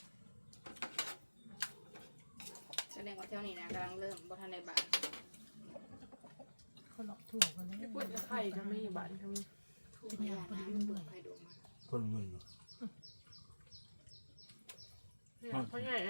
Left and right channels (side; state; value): both; inverted; correlation -1.00